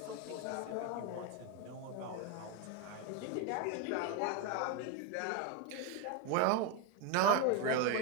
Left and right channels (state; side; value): different; both; correlation 0.02